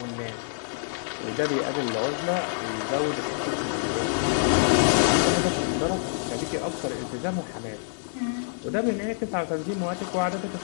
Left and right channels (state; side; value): silent; right; digital silence